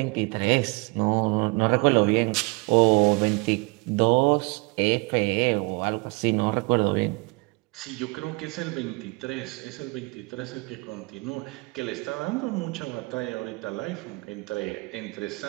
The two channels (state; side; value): quieter; left; 27.6 dB